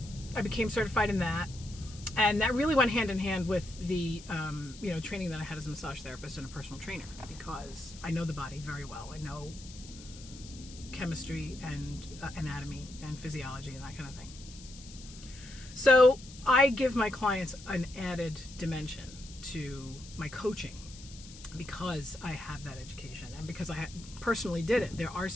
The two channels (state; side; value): noise; left; hiss, 17 dB below the sound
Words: I became certified in that. And that really went hand in hand with the, training that I had as a massage therapist and a personal trainer, because I know the body very well. I know chemistry and anatomy and physiology and that kind of thing. So I give my clients an added dimension to my coaching because I have that education and because I personally did it. There are